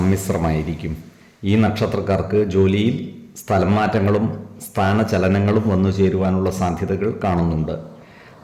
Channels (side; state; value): both; identical; correlation 1.00